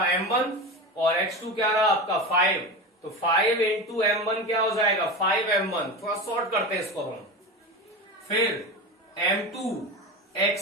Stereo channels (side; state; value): both; normal; correlation 0.24